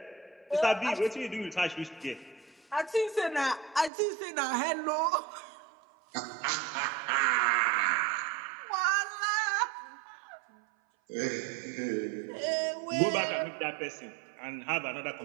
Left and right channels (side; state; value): left; drops out; at 3.9 s